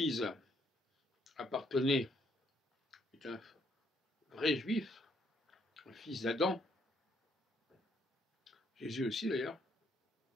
appartenait, est un vrai juif, un fils d'Adam. Jésus aussi d'ailleurs.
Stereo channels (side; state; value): both; normal; correlation 0.71